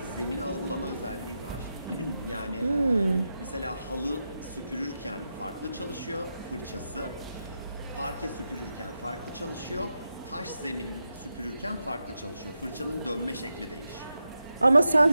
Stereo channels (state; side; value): inverted; both; correlation -0.88